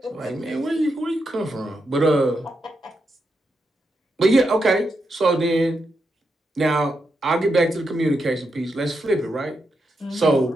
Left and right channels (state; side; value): normal; both; correlation 0.84